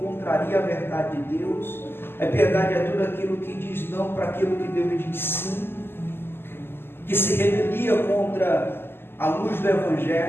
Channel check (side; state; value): right; late; 0.11 ms